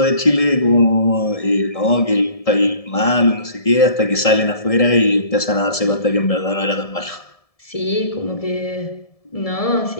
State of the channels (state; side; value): late; right; 1.7 ms